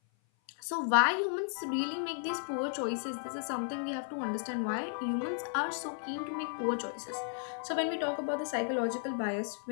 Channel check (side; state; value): right; silent; 55 dB below the other